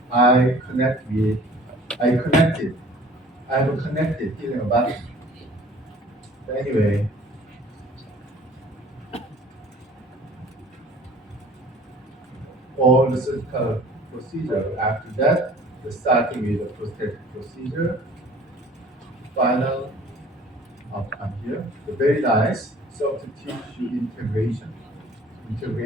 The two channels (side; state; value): both; normal; correlation 0.50